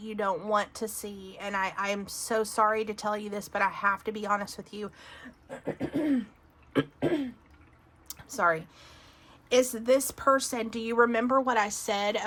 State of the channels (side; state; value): both; identical; correlation 1.00